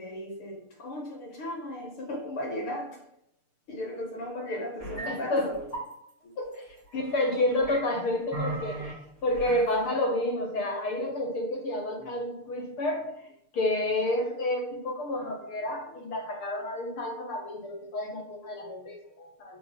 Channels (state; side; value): late; right; 6.7 ms